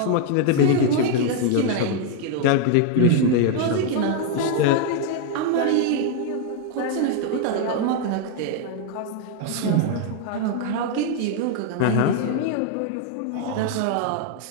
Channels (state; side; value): different; both; correlation 0.00